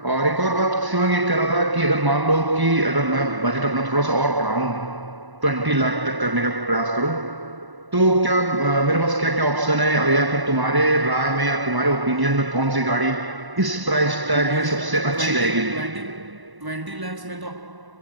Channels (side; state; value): left; late; 1.0 ms